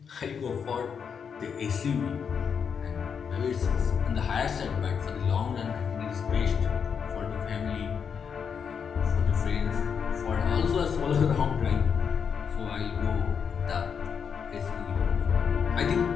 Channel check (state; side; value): quieter; right; 6.8 dB